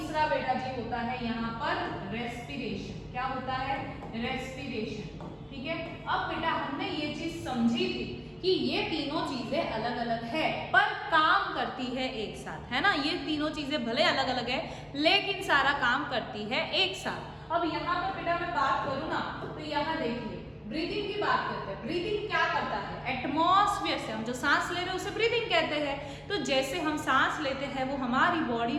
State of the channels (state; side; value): identical; both; correlation 1.00